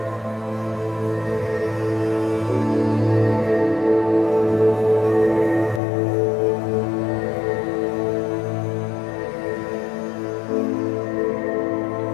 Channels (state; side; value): drops out; right; at 5.8 s